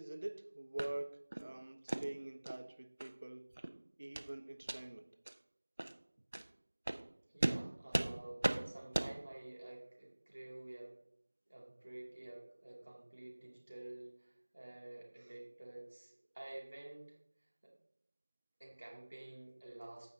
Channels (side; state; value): both; inverted; correlation -1.00